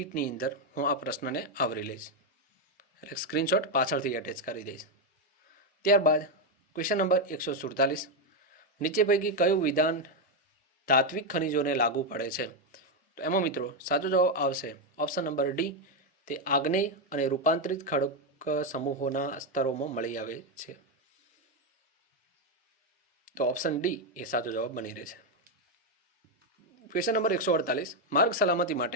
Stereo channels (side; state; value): both; normal; correlation 0.05